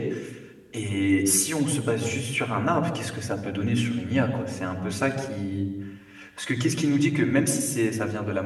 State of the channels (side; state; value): both; identical; correlation 1.00